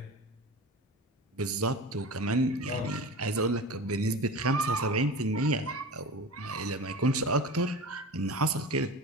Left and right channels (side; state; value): both; normal; correlation 0.32